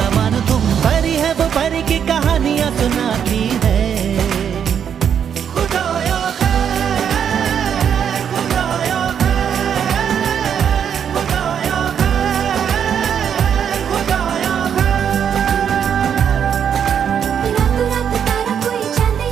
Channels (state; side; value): quieter; left; 8.2 dB